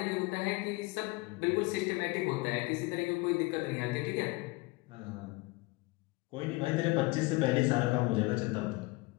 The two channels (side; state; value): right; quieter; 23.5 dB